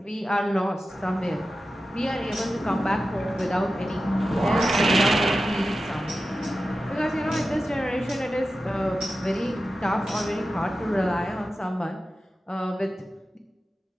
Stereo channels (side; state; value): both; normal; correlation 0.93